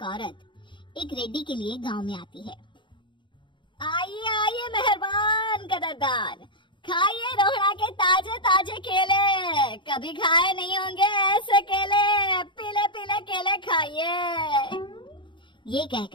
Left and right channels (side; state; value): right; late; 0.23 ms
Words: औरत एक रेड्डी के लिए गांव में आती है। आइए आइए मेहरबान कदरदान, खाइए रोहड़ा के ताजे ताजे केले, कभी खाए नहीं होंगे ऐसे केले, पीले पीले केले खाइए। ये